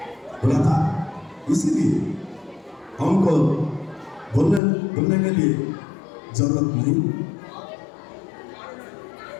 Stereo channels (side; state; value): right; drops out; at 4.6 s